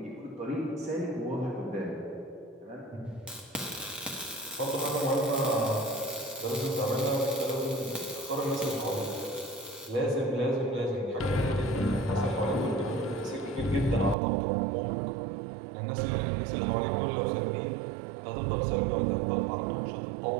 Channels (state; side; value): drops out; left; at 14.2 s